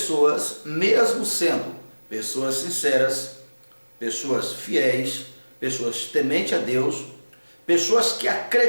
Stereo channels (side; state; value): both; inverted; correlation -1.00